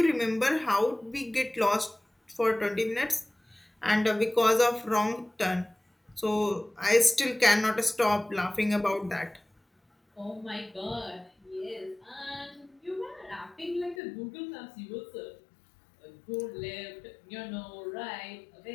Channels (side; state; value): right; drops out; at 14.0 s